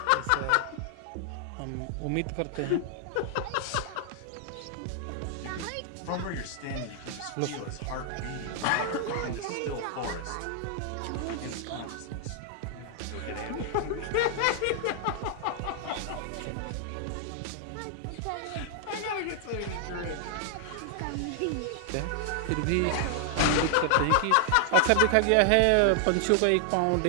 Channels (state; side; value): different; both; correlation 0.00